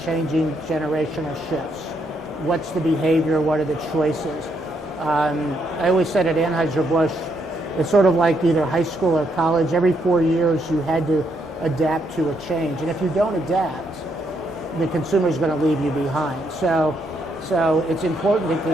changing generational shifts. What's the behavior? What are the choices? I always said at Anheuser-Busch, it's sort of like either high school or college. Every 4 years you had to adapt to a change. And if you don't adapt, the consumer's going to leave you behind. So it's important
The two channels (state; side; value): normal; both; correlation 0.76